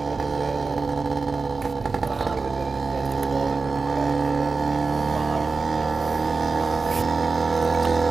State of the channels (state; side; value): quieter; left; 4.2 dB